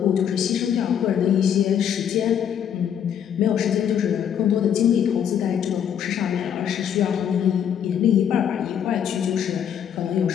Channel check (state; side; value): quieter; right; 8.9 dB